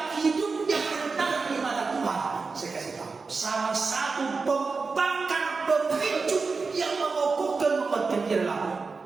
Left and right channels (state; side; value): quieter; left; 4.5 dB